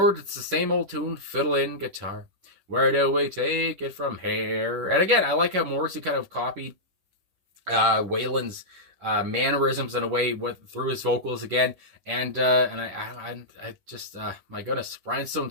it's the same old tune, fiddle and guitar. Where do we take it from here? And again, I like how Morrissey kind of copied Waylon's mannerisms in a way through his vocals again. And I just, my goodness, rhinestone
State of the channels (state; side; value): late; left; 10 ms